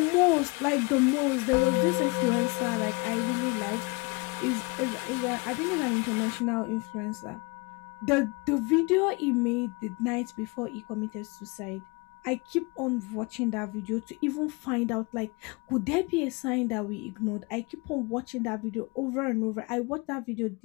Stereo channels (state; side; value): quieter; right; 27.9 dB